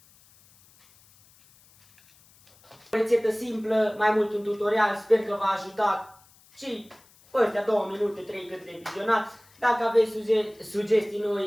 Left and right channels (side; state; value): left; noise; hiss, 29 dB below the sound